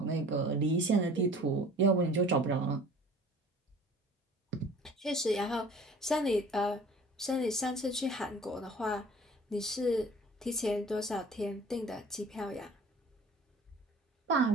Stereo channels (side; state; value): both; normal; correlation 0.47